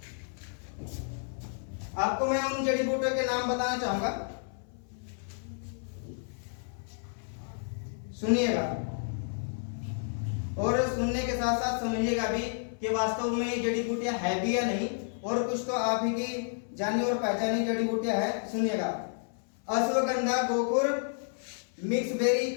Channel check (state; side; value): silent; right; 57 dB below the other